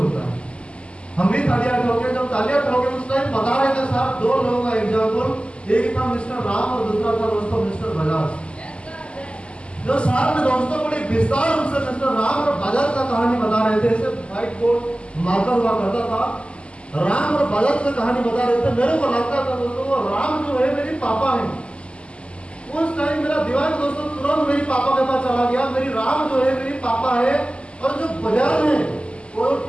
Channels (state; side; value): late; right; 0.054 ms